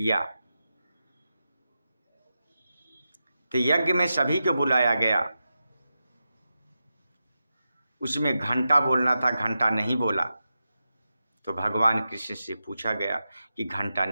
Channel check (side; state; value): both; inverted; correlation -0.90